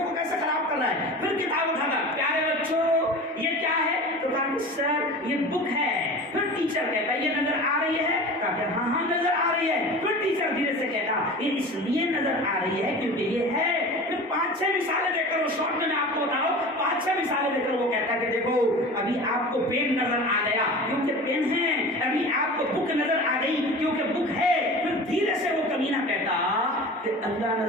کیسے خراب کر رہا ہے، پھر کتاب اٹھاتا، پیارے بچوں یہ کیا ہے؟ تو کہا کہ سر یہ بک ہے۔ پھر ٹیچر کہتا ہے یہ نظر آ رہی ہے، کہا کہ ہاں ہاں نظر آ رہی ہے۔ پھر ٹیچر دھیرے سے کہتا یہ اس لیے نظر آ رہی ہے کیونکہ یہ ہے۔ پھر 5 5-6 مثالیں دے کر وہ شارٹ میں آپ کو بتا رہا ہوں 5-6 مثالیں دے کر وہ کہتا ہے کہ دیکھو ابھی آپ کو پین نظر آ گیا کیونکہ پین ہے, ابھی آپ کو بک نظر آ گئی کیونکہ بک ہے. پھر دھیرے سے وہ کمینہ کہتا کہ اللہ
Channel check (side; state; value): both; normal; correlation 0.35